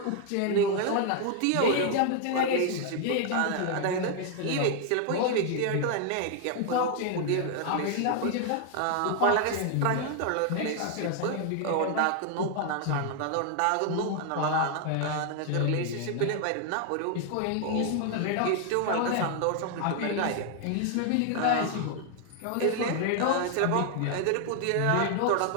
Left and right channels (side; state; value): both; different; correlation 0.00